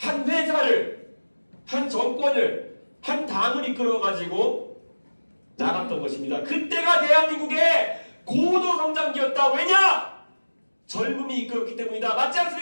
회사를, 한 정권을, 한 당을 이끌어 가지고 나갔던 것입니다. 그때가 대한민국의 고도 성장기였다. 왜냐? 젊음이 이끌었기 때문이다. 맞지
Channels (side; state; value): both; inverted; correlation -1.00